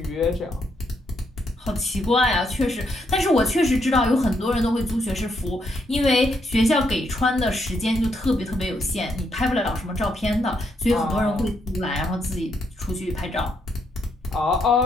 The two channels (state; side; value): normal; both; correlation 0.77